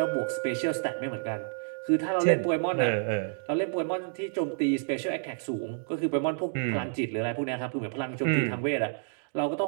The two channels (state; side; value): silent; left; digital silence